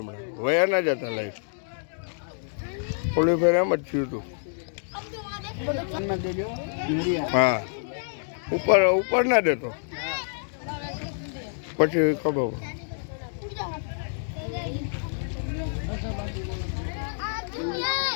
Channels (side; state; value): right; silent; digital silence